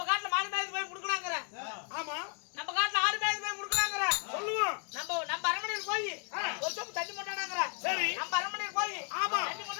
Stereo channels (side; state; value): right; quieter; 38.5 dB